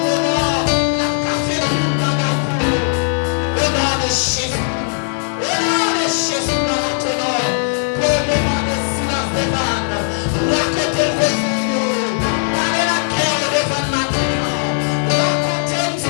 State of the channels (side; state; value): right; silent; 68 dB below the other